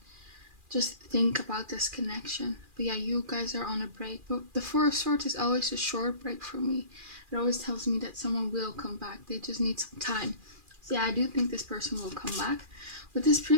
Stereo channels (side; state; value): left; late; 2.4 ms